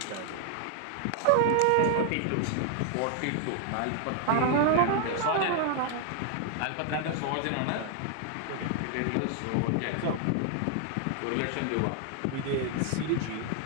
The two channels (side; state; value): both; different; correlation 0.00